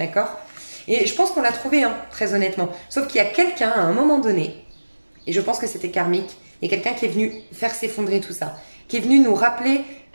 Et je pense qu'on l'a trouvé, hein, très honnêtement. Sauf qu'il y a quelqu'un, à un moment donné, et je pense que c'était karmique, il y a quelqu'un qui est venu faire s'effondrer tout ça, qui est venu nous rappeler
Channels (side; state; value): both; inverted; correlation -1.00